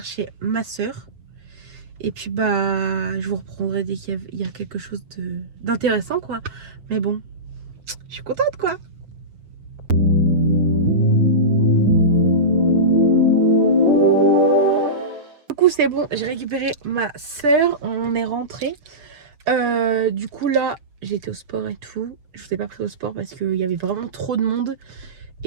ma soeur. Et puis bah je vous reprendrai dès qu'il y a quelque chose d'intéressant quoi. Mais bon, je suis contente quoi. Du coup c'est bon, j'ai récupéré ma soeur, on est rentré. Du coup là j'ai été au sport et tout. Je vous ai pas pris au sport parce qu'il y avait vraiment trop de monde.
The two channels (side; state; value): left; late; 6.8 ms